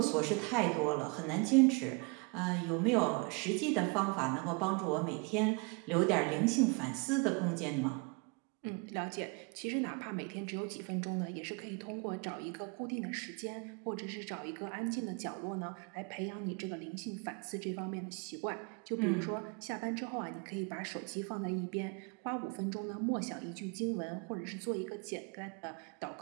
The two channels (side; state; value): left; quieter; 31.9 dB